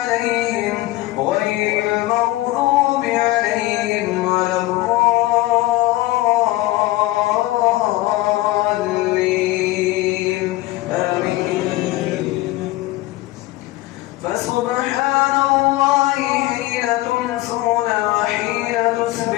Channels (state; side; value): quieter; right; 18.0 dB